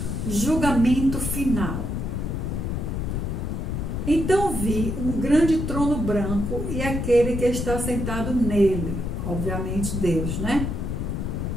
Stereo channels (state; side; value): noise; left; rumble, 2 dB below the sound